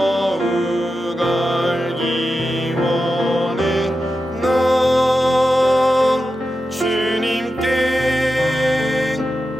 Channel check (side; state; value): both; normal; correlation 0.90